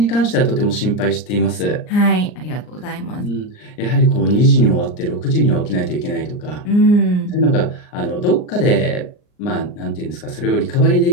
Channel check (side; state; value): right; late; 39 ms